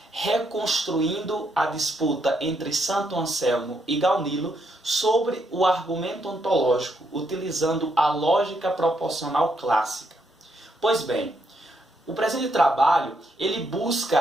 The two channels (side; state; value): both; normal; correlation 0.76